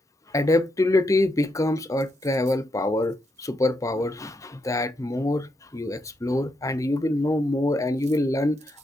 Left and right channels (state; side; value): normal; both; correlation 0.81